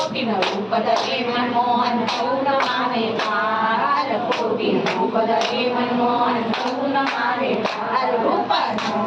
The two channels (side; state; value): both; identical; correlation 1.00